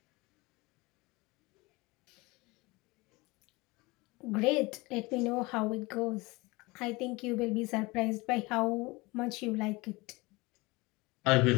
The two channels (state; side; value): quieter; right; 23.5 dB